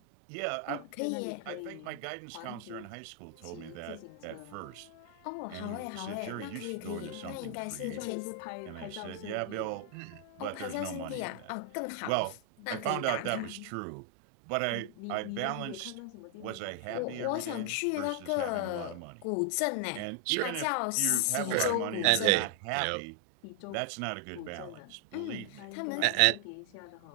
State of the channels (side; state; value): both; different; correlation 0.00